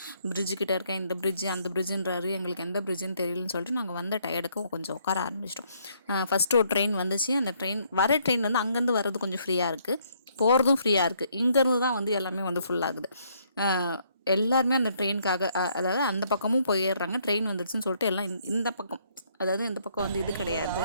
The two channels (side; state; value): both; inverted; correlation -0.69